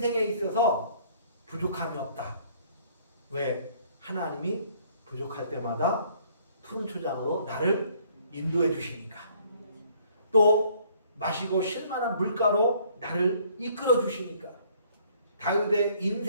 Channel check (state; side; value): inverted; both; correlation -0.60